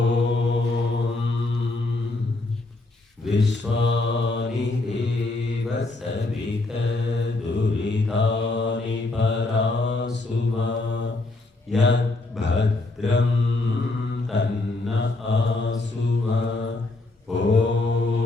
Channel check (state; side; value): quieter; right; 3.1 dB